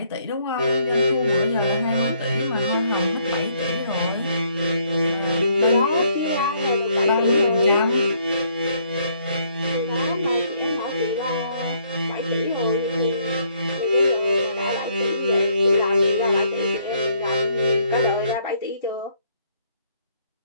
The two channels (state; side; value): inverted; both; correlation -0.67